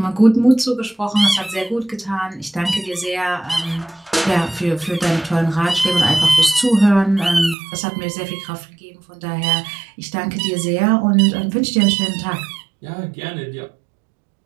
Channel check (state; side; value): drops out; left; at 7.6 s